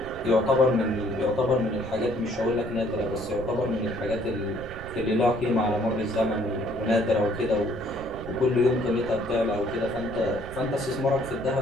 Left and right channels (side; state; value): right; noise; rumble, 13 dB below the sound